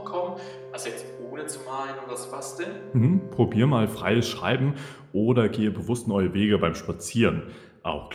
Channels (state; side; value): identical; both; correlation 1.00